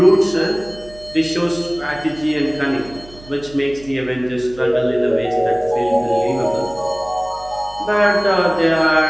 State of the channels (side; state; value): right; noise; hum, 20 dB below the sound